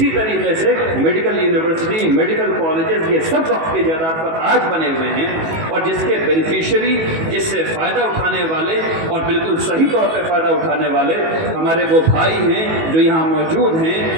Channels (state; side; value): late; left; 18 ms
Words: طریقے سے میڈیکل یونیورسٹی، میڈیکل کالجز، یہ سب وقف کی جائیداد پر آج بنے ہوئے ہیں، اور جس کے بینیفیشری، جس سے فائدہ اٹھانے والے اور بالکل صحیح طور پہ فائدہ اٹھانے والے ہمارے وہ بھائی ہیں جو یہاں موجود ہیں.